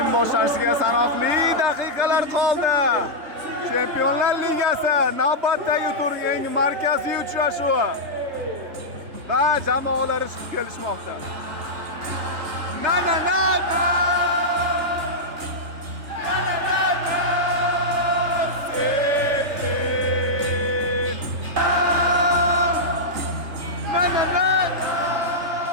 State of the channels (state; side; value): late; left; 3.3 ms